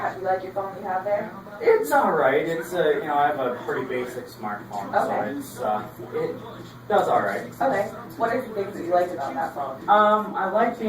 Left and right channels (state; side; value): identical; both; correlation 1.00